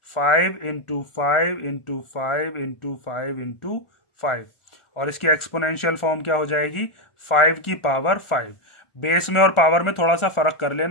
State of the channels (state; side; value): late; right; 1.4 ms